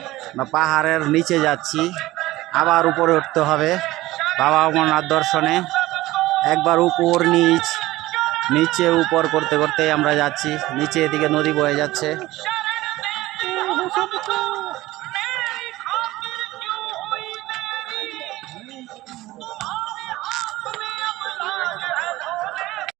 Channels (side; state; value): left; quieter; 17.6 dB